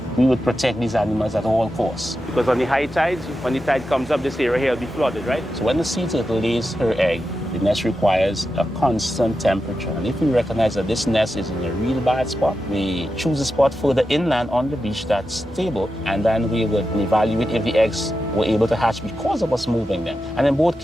We would protect these animals at all costs. Because on the high tides, when the tide comes up, this area here will be flooded, right? So when the sea turtle lays her egg, the nest requires a constant temperature. And if we recognize that this nest is in a real bad spot, we choose a spot further inland on the beach that's stable, and then we would evaluate if the eggs were able to hatch because of us moving them. And in both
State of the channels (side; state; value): both; normal; correlation 0.90